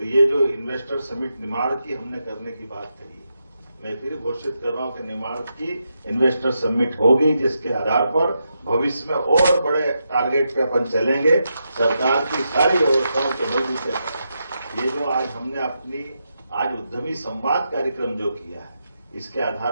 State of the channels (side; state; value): both; inverted; correlation -0.85